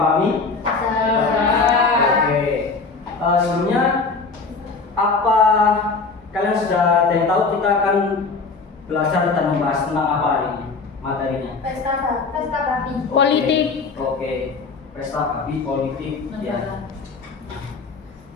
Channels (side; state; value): right; quieter; 4.3 dB